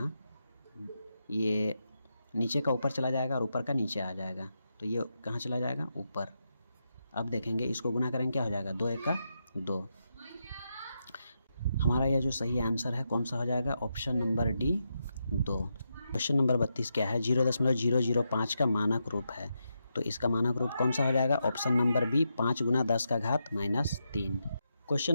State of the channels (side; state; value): both; inverted; correlation -0.84